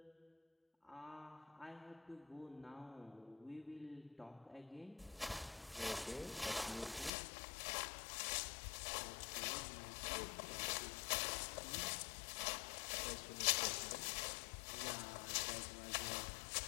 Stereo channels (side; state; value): right; drops out; at 7.1 s